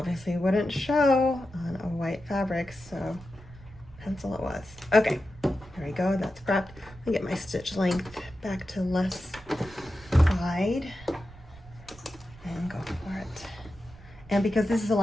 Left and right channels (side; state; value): right; noise; rumble, 20 dB below the sound